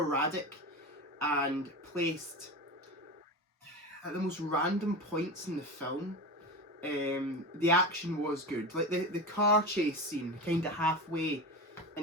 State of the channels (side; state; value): both; normal; correlation 0.24